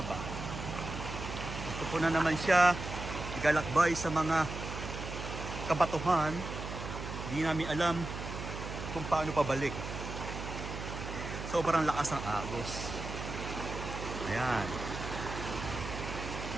Gusto po na naman siya igalakbay sa mga kabatuhan. Di namin alam kung paano pabalik. Sobrang lakas ng agos. Ayan.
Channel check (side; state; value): right; noise; hum, 7 dB below the sound